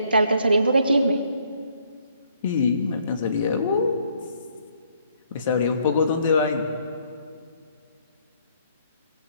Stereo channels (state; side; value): inverted; both; correlation -0.67